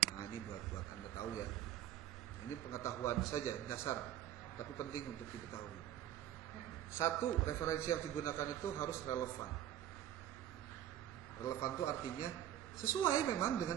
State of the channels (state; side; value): quieter; left; 11.7 dB